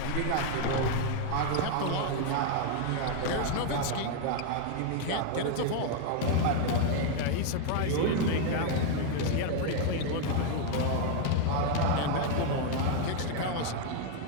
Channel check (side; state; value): both; different; correlation 0.00